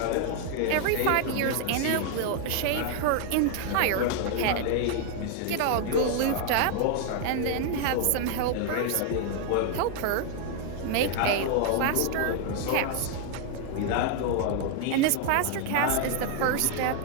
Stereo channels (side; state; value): both; different; correlation 0.00